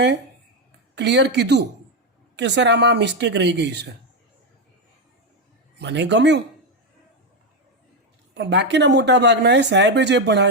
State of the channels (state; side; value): normal; both; correlation 0.07